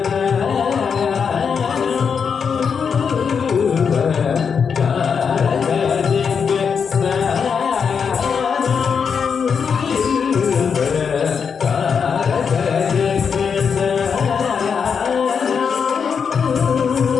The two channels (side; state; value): right; quieter; 6.4 dB